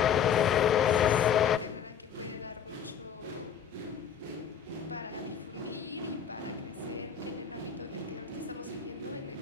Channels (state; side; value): quieter; right; 8.0 dB